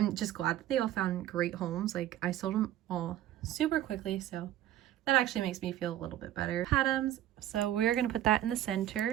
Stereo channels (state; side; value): quieter; left; 12.7 dB